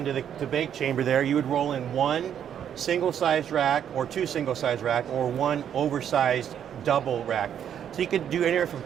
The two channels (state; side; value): quieter; left; 9.1 dB